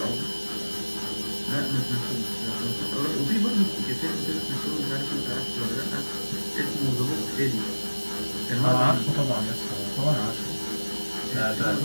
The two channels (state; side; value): inverted; both; correlation -1.00